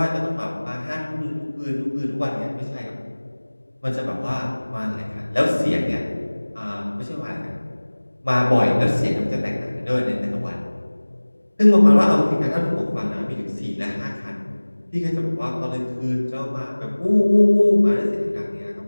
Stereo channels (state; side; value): inverted; both; correlation -1.00